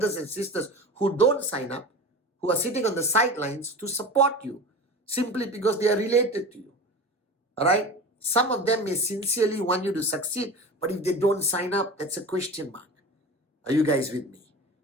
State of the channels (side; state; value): both; normal; correlation 0.32